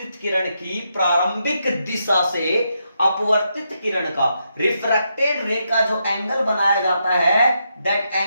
किरण की प्रारंभिक दिशा से अपवर्तित किरण का, रिफ्रैक्टेड रे का जो एंगल बनाया जाता है, that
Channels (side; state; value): both; inverted; correlation -0.81